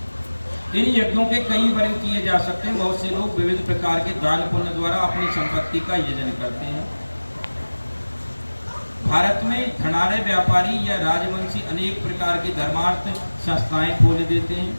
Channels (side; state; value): both; inverted; correlation -1.00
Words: इन यज्ञों के कई वर्ग किए जा सकते हैं। बहुत से लोग विविध प्रकार के दान पुण्य द्वारा अपनी संपत्ति का यजन करते हैं। भारत में धनाढ़ व्यापारी या राजवंशी अनेक प्रकार की धर्मार्थ संस्थाएं खोल देते हैं,